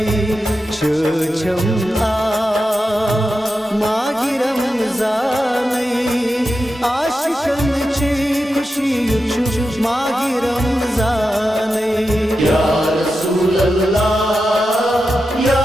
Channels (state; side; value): normal; both; correlation 0.90